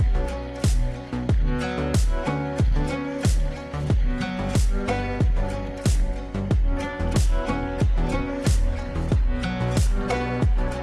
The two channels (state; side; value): identical; both; correlation 1.00